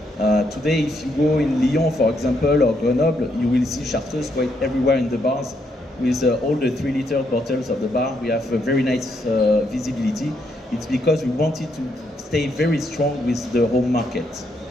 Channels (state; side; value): normal; both; correlation 0.76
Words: Today, if you go in Lyon, for example, or Grenoble, you will see Chartreuse quite everywhere in the bars with all the 3-liter bottles of the bar. We have a very nice visibility. It's because we wanted to stay very strong with the home market.